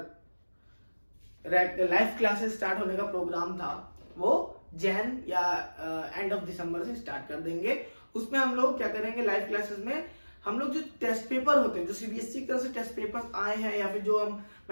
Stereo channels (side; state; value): both; inverted; correlation -1.00